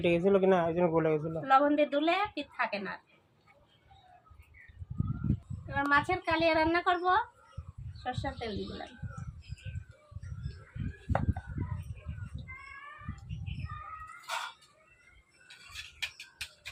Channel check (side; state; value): both; identical; correlation 1.00